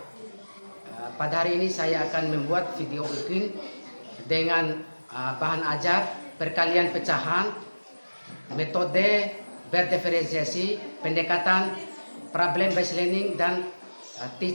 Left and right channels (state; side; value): inverted; both; correlation -1.00